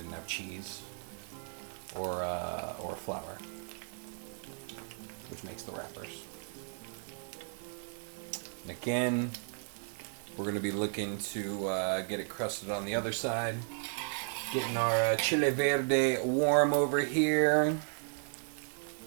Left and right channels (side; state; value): left; silent; 55 dB below the other